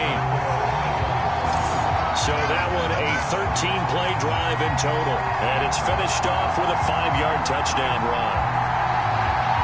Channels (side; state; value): both; identical; correlation 1.00